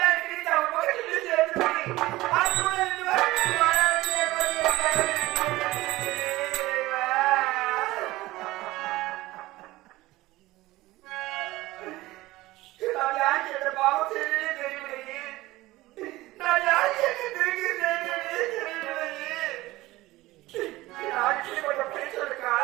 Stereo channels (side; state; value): left; quieter; 18.3 dB